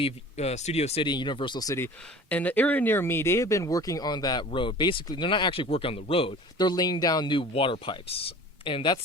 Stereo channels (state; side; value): normal; both; correlation 0.42